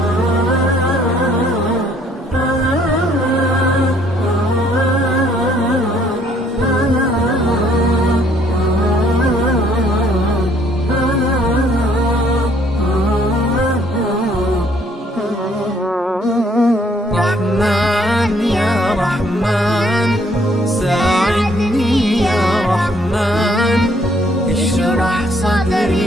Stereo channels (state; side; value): normal; both; correlation 0.64